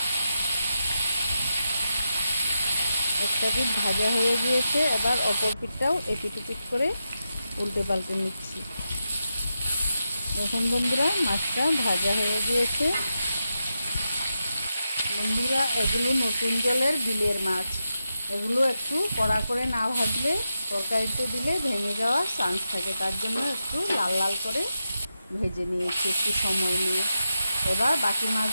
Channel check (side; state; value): both; inverted; correlation -0.88